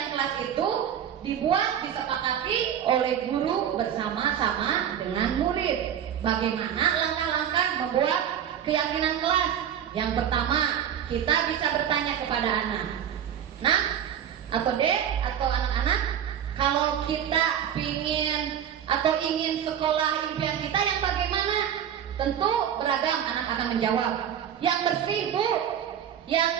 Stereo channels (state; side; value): quieter; left; 9.4 dB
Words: kelas itu dibuat, disepakati oleh guru bersama-sama dengan murid. Bagaimana langkah-langkah membuat keyakinan kelas? Yang pertama, kita bisa bertanya kepada anak, Nak atau Dek atau anak-anak, kalau kita ingin sekolah impian kita yang bagaimana? Tentu beragam, anak akan menjawab. Yang bersih, Bu,